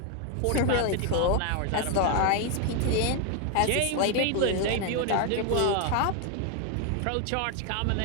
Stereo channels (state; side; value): different; both; correlation 0.01